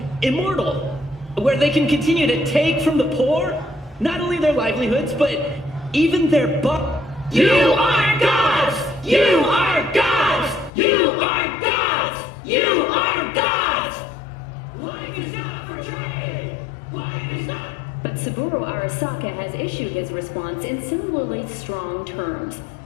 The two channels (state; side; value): drops out; right; at 10.7 s